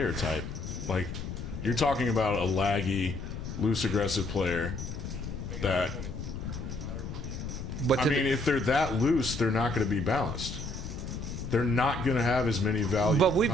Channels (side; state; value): left; noise; rumble, 7 dB below the sound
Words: type. Like, you're talking about a laggy, loose, aggressive player that. But I mean, if they're that loose, they're not going to be balanced. They're not going to have as many value. But